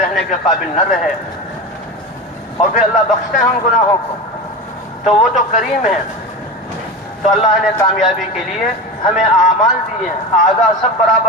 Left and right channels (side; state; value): both; normal; correlation 0.26